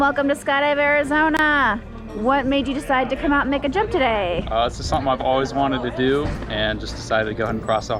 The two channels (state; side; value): identical; both; correlation 1.00